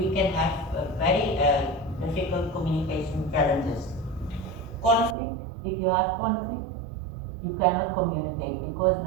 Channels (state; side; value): drops out; left; at 5.2 s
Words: can have very difficult communication challenges. Conflict, if you have conflict, you cannot communicate because